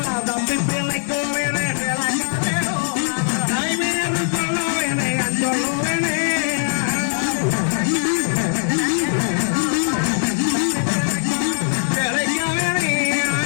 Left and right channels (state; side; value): silent; right; 60 dB below the other